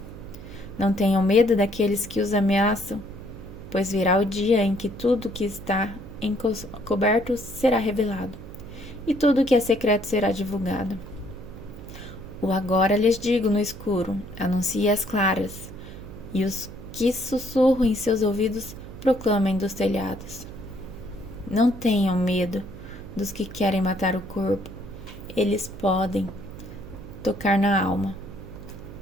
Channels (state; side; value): noise; right; hum, 14 dB below the sound